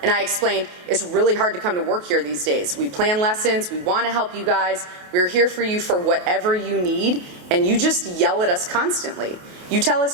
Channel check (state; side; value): late; left; 28 ms